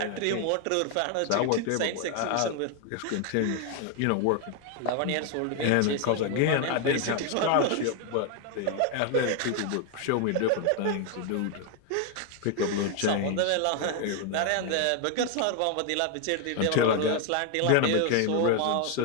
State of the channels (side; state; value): both; different; correlation 0.01